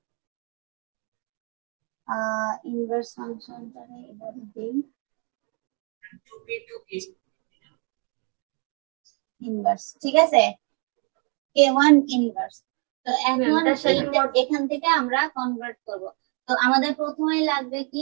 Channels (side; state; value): left; quieter; 36.9 dB